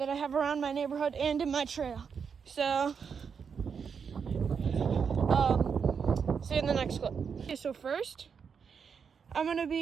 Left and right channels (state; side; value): quieter; left; 6.4 dB